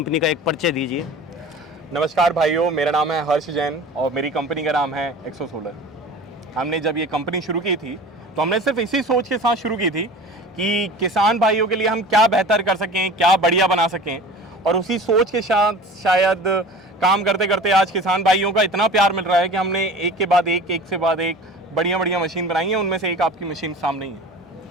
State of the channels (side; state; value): both; normal; correlation 0.39